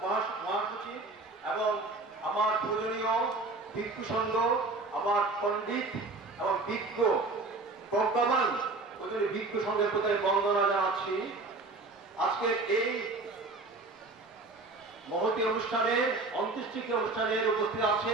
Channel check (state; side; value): quieter; left; 3.4 dB